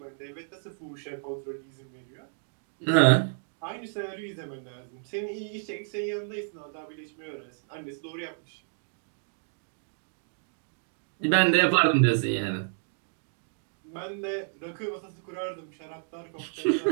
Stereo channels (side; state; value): left; silent; digital silence